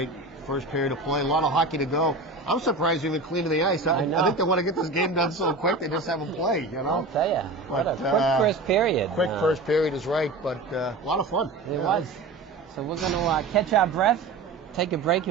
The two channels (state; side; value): quieter; left; 3.2 dB